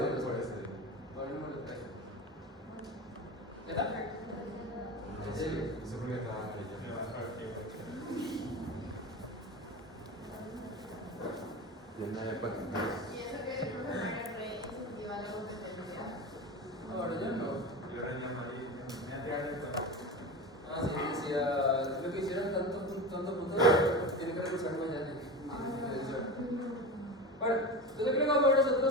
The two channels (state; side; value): normal; both; correlation 0.27